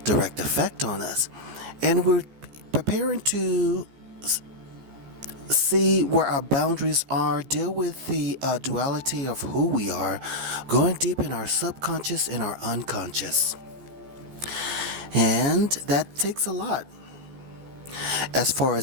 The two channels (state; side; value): late; left; 14 ms